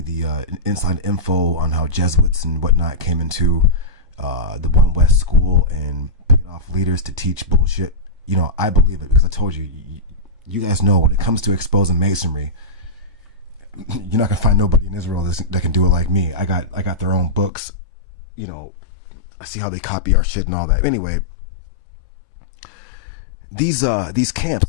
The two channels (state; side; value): drops out; right; at 17.5 s